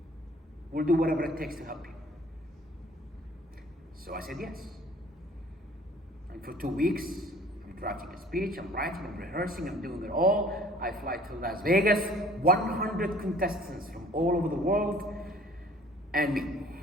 We'll do whatever it takes to help you. So I said yes. And for 2 weeks, I'm drafting a speech, I'm writing, I'm rehearsing, I'm doing it all. I fly to Las Vegas, 100 contestants from all over the world, and me.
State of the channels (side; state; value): both; normal; correlation 0.52